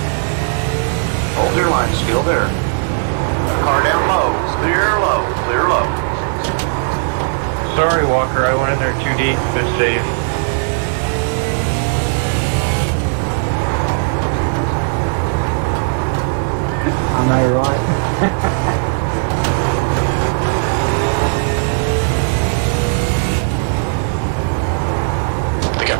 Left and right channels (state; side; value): silent; left; 57 dB below the other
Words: Hold your line. Still there. Car down low. Clear low. Clear low. Sorry, Walker, I went in there too deep. Good save. I know, right? The gap